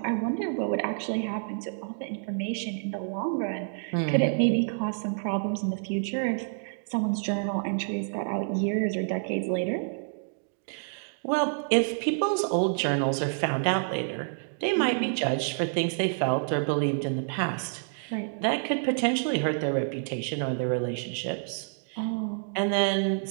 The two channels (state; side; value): silent; left; digital silence